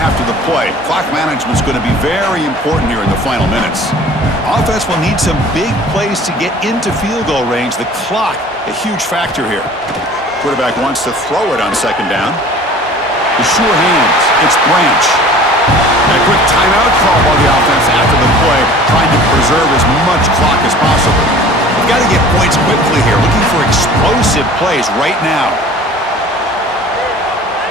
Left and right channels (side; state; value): both; normal; correlation 0.46